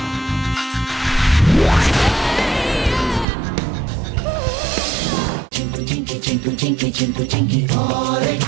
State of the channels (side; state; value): left; drops out; at 3.2 s